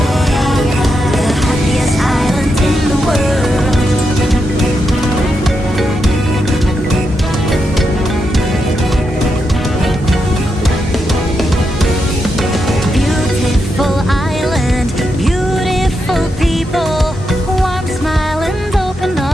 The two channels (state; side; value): normal; both; correlation 0.84